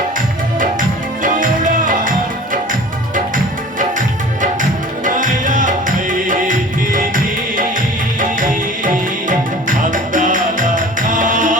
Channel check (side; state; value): both; normal; correlation 0.43